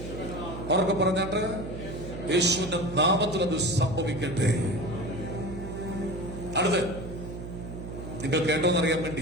പറഞ്ഞാട്ട് യേശുവിന്റെ നാമത്തിൽ അത് സംഭവിക്കട്ടെ. അടുത്ത് നിങ്ങൾ കേട്ടോന്നറിയാൻ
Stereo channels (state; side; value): noise; right; hum, 9 dB below the sound